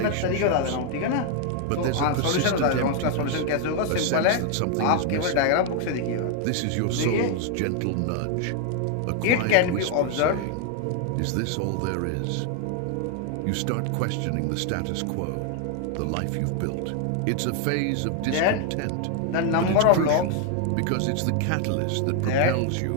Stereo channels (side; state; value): both; different; correlation 0.00